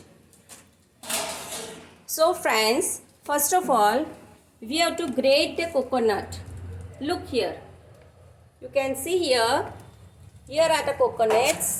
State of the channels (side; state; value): both; identical; correlation 1.00